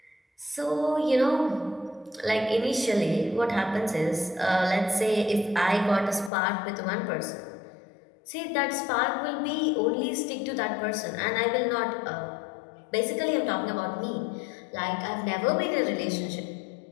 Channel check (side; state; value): right; drops out; at 6.3 s